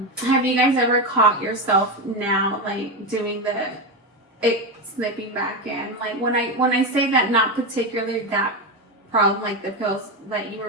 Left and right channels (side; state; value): both; normal; correlation 0.14